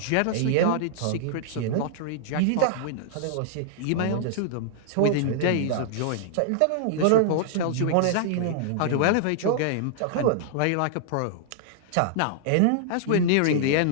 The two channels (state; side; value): different; both; correlation -0.01